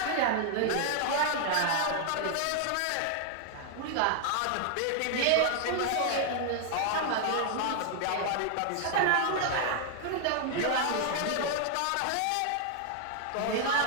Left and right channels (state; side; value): different; both; correlation 0.00